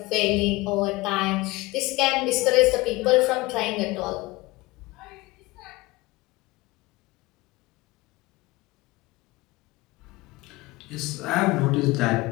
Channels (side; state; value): right; quieter; 21.2 dB